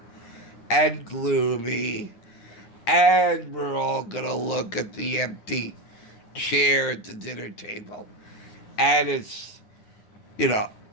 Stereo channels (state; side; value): late; right; 9.6 ms